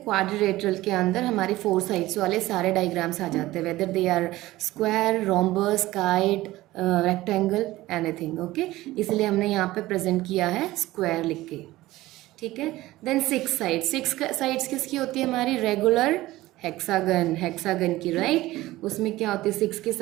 के अंदर हमारे 4 साइड्स वाले सारे डायग्राम्स आ जाते हैं, whether they are square, rhombus, kite, rectangle, anything, okay. इसलिए हमने यहाँ पे प्रेजेंट किया है स्क्वायर लिख के, ठीक है। देन 6 साइड्स, 6 साइड्स किसकी होती है, हमारी रेगुलर हेक्सागन, हेक्सागन की, राइट। उसमें क्या होती है, 6 की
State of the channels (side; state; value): left; quieter; 17.4 dB